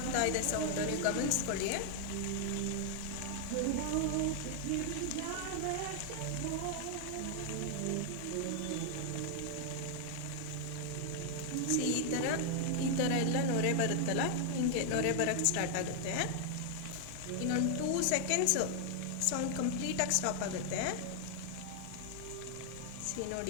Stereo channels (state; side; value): different; both; correlation 0.00